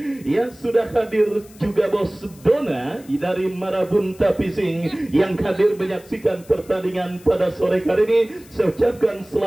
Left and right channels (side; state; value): left; noise; hiss, 24 dB below the sound